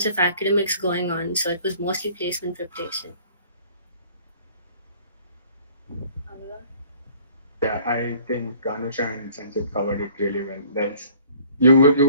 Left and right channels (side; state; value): both; inverted; correlation -0.54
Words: of academics going on, so it was mostly placement preparation. Anurag? Yeah, I think Anusha and Sanjit covered it really well. You